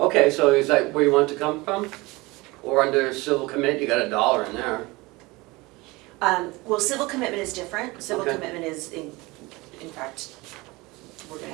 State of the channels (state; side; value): quieter; left; 22.8 dB